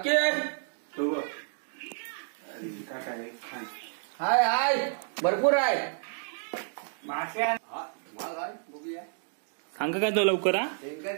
हो बघ. काय काय खान हाय हाय भरपूर आहे. माश्या बघूया सांगा काय तो लवकर हा.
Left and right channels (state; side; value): silent; left; digital silence